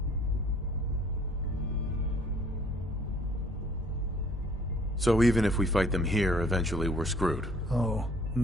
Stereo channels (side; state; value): both; normal; correlation 0.57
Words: So even if we fight them here, eventually we're screwed. Oh,